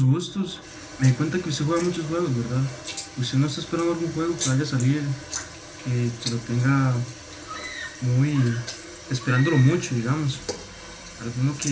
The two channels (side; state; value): both; identical; correlation 1.00